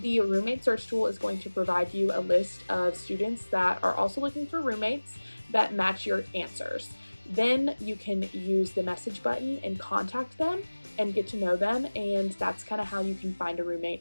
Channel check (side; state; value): both; inverted; correlation -1.00